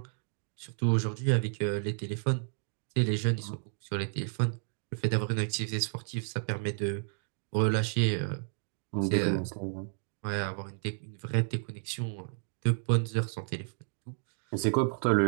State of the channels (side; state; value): left; silent; 57 dB below the other